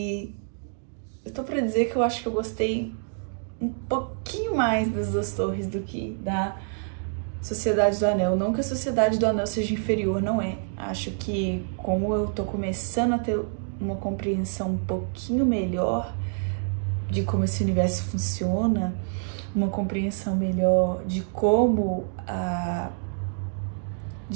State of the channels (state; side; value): silent; left; digital silence